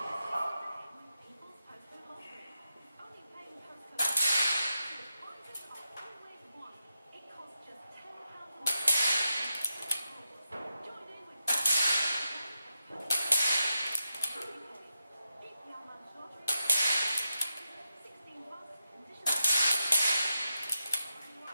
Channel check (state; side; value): inverted; both; correlation -0.87